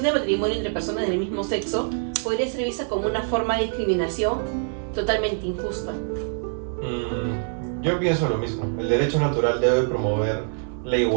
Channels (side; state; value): left; silent; digital silence